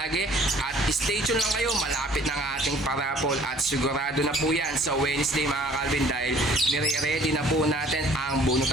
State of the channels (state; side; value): normal; both; correlation 0.54